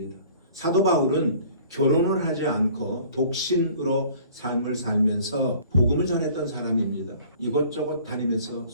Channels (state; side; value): inverted; both; correlation -0.51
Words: 사도 바울은 결혼을 하지 않고 독신으로 삶을 살면서 복음을 전했던 사람입니다. 이곳저곳 다니면서